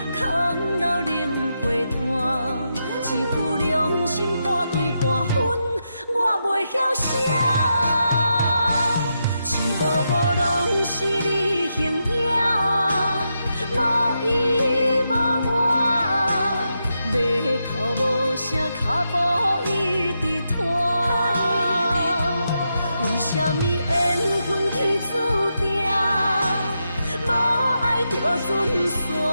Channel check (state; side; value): inverted; both; correlation -0.85